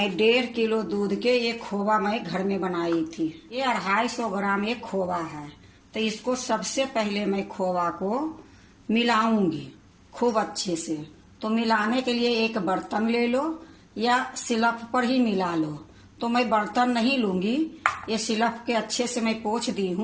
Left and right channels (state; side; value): identical; both; correlation 1.00